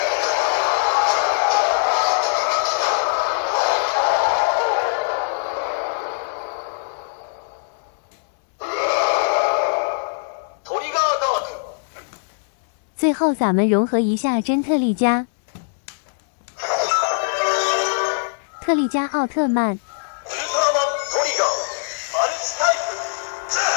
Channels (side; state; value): right; silent; 62 dB below the other